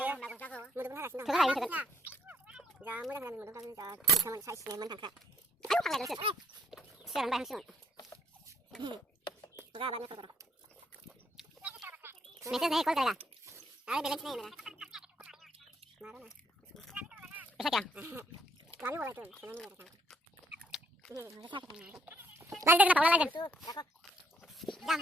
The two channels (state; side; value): normal; both; correlation 0.68